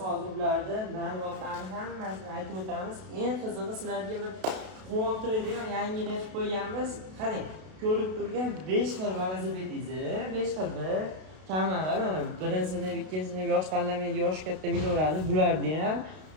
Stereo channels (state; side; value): late; left; 32 ms